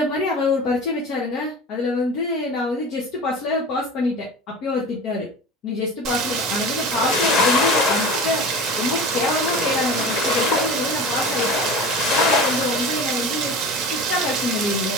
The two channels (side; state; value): both; normal; correlation 0.33